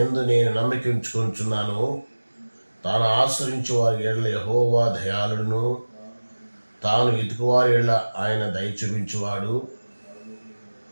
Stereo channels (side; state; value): both; inverted; correlation -1.00